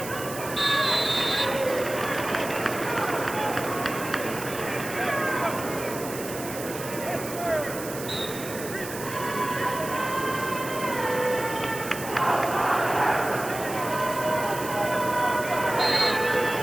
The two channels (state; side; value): noise; right; hiss, 10 dB below the sound